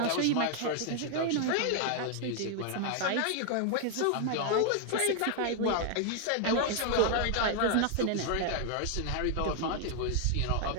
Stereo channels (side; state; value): both; different; correlation 0.00